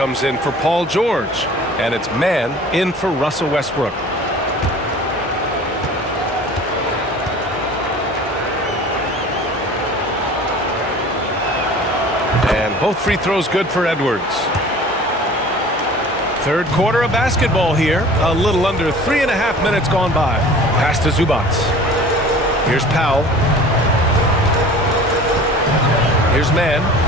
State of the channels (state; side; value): normal; both; correlation 0.44